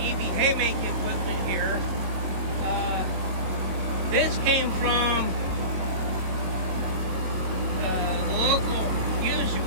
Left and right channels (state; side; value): late; left; 22 ms